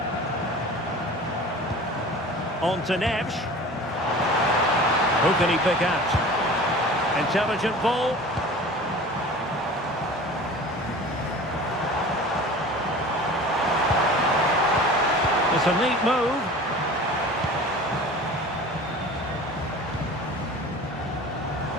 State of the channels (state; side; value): normal; both; correlation 0.40